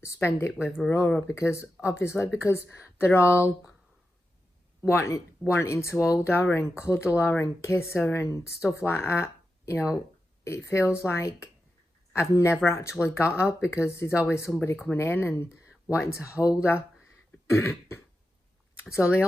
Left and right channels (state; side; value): normal; both; correlation 0.90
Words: spend it with Aurora, because obviously, because they're all wanting to hold her and cuddle her and kiss her and stuff like that. You know, it feels like I've never actually got her, because there's always somebody coming in and wanting to hold her. So the